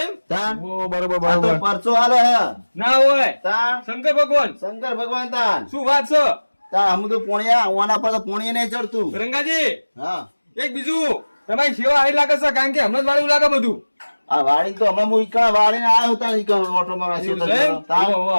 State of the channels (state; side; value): inverted; both; correlation -1.00